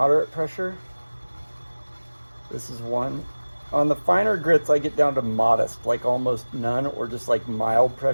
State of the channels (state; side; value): inverted; both; correlation -1.00